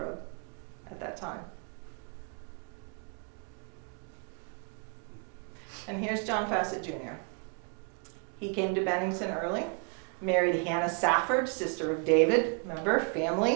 at that time. And here's John Fassett Jr. He came to Bennington early, married Hannah Safford, sister of David. Remember,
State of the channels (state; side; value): quieter; left; 38.6 dB